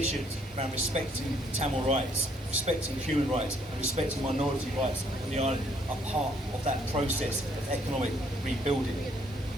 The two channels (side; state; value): both; normal; correlation 0.66